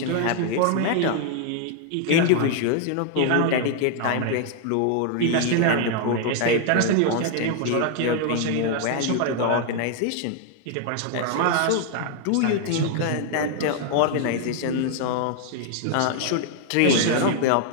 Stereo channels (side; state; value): both; different; correlation 0.00